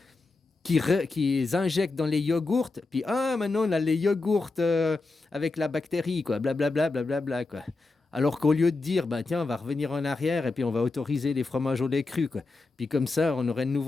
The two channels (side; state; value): right; quieter; 3.6 dB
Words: qui injectent dans les yogourts, puis maintenant on a les yogourts avec la bactérie, quoi, blablabla, blablabla, quoi. Alors qu'au lieu de dire, bah tiens, on va revenir en arrière et puis on va autoriser les fromages au lait cru, quoi. Puis comme ça, on aurait de